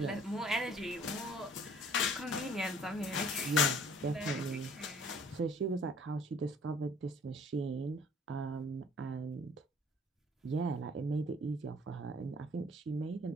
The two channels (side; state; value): both; normal; correlation 0.55